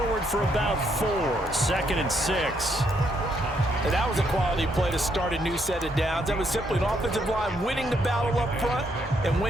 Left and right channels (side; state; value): both; normal; correlation 0.74